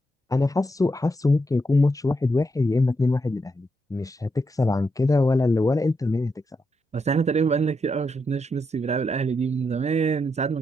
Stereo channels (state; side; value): normal; both; correlation 0.82